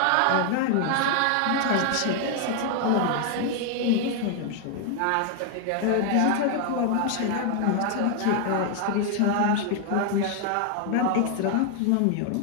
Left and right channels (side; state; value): both; different; correlation 0.00